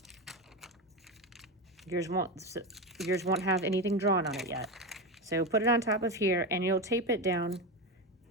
Yours won't have anything drawn on it yet. So put it on top of here, and you'll tape it down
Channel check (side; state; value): both; normal; correlation 0.17